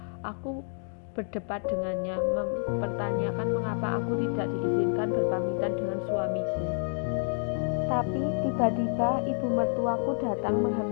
Aku berdebat dengannya, mempertanyakan mengapa aku tidak diizinkan berpamitan dengan suamiku. Tapi tiba-tiba ibu mertuaku datang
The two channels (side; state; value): right; silent; 59 dB below the other